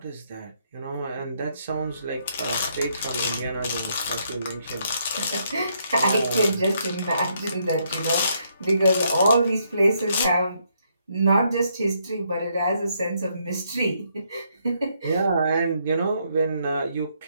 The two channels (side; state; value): both; inverted; correlation -0.73